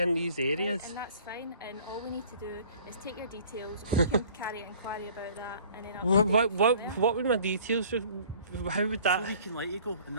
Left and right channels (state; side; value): inverted; both; correlation -0.51